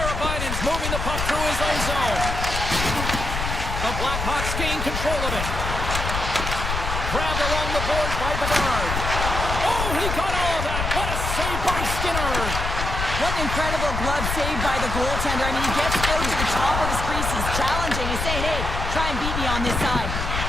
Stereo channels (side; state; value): left; noise; rumble, 3 dB below the sound